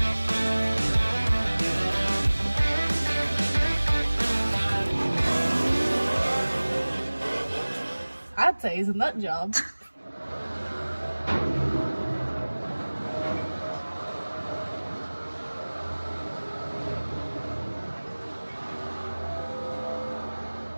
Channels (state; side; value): inverted; both; correlation -1.00